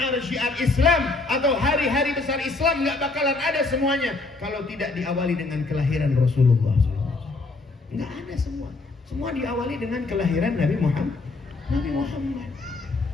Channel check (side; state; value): right; quieter; 3.5 dB